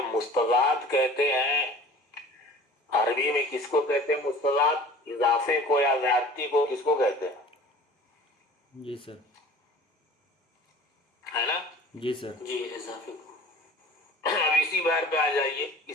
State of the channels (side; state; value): both; normal; correlation 0.44